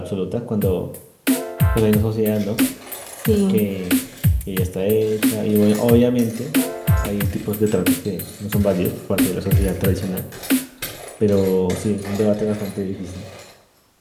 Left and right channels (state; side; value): identical; both; correlation 1.00